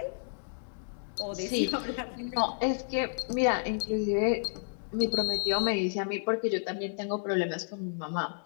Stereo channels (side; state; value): right; silent; digital silence